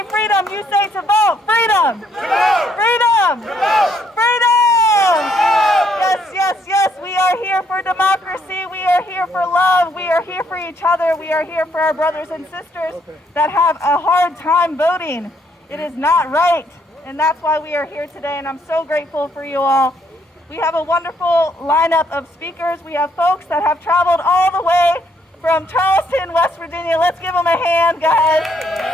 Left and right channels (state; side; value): normal; both; correlation 0.70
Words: freedom, you say to vote. Freedom. Freedom. Freedom. Yes, yes, yes. We are here for democracy. We are here for love. We are here for each other. We are here for our brothers and sisters that have a hard time voting. It is not right. And that's why we are here today. And I'm so grateful for you all. We have a wonderful lineup of speakers. We have folks that have traveled all the way from Charleston, West Virginia. Let's give them a hand, guys.